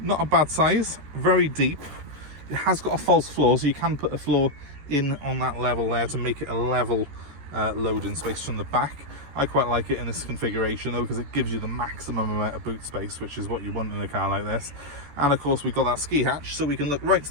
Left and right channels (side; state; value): left; late; 14 ms